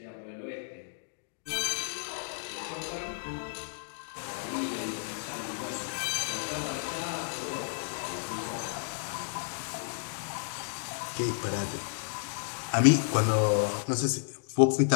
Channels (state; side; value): silent; right; digital silence